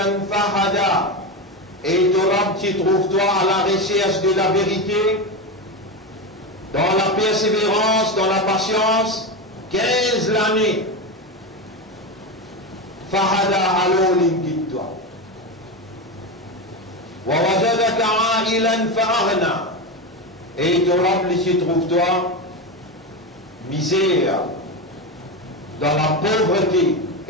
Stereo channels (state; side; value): normal; both; correlation 0.17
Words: fahada. Et ton Rab, tu trouves toi à la recherche de la vérité, dans la persévérance, dans la patience, 15 l'année. Fahada alors l'inguide-toi. Wa wajadaka a'ilan fa'aghna. Et ton Rab, tu trouves toi misère, dans la pauvreté,